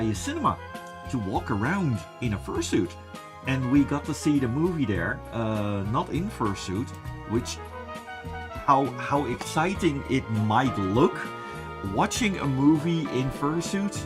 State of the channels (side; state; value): both; identical; correlation 1.00